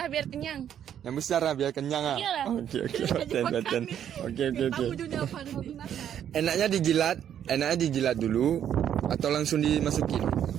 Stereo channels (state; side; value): quieter; left; 9.7 dB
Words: biar kenyang. Yang besar lah biar kenyang ah. Iyalah. Oke. Paten. Oke. Enaknya dijilat dulu atau langsung dimasukin?